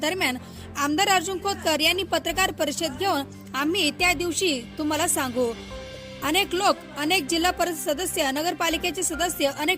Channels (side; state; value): both; identical; correlation 1.00